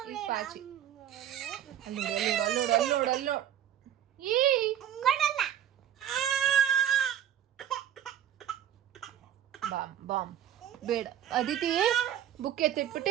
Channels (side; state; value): left; quieter; 10.5 dB